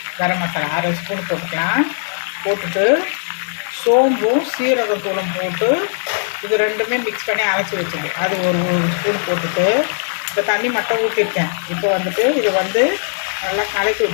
கரம் மசாலா அரை ஸ்பூன் போட்டுட்டு சோம்பும் சீரகத்தூளும் போட்டு இது ரெண்டுமே மிக்ஸ் பண்ணி அரைச்சி வச்சுது. அது ஒரு ஸ்பூன் போட்டுட்டு இப்போ தண்ணி மட்டும் ஊற்றிருக்கேன். இப்போ வந்துட்டு இது வந்து நல்லா கலக்கி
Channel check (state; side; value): silent; right; digital silence